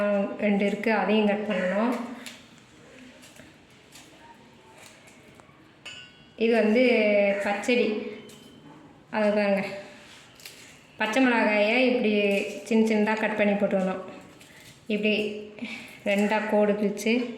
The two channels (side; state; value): both; identical; correlation 1.00